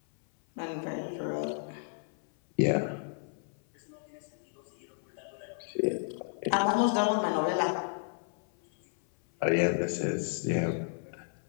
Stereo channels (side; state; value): right; silent; 56 dB below the other